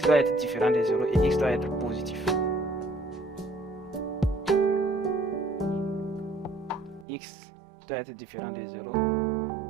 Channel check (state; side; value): drops out; left; at 7.1 s